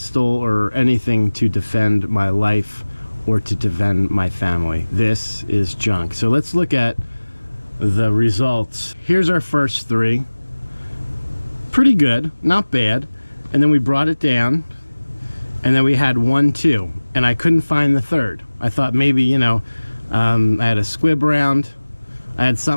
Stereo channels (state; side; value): inverted; both; correlation -1.00